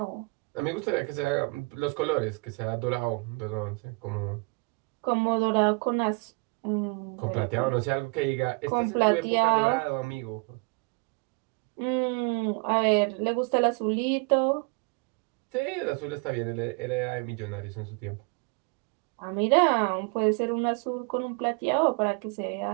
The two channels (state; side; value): quieter; left; 32.5 dB